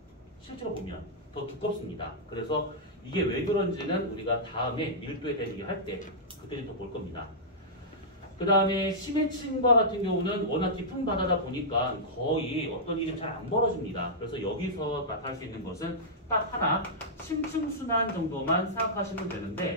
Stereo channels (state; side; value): normal; both; correlation -0.11